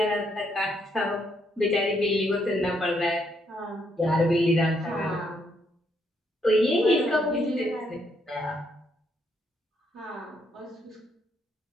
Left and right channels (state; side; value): normal; both; correlation 0.74